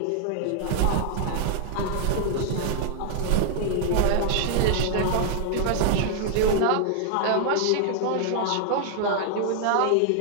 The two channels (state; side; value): different; both; correlation 0.00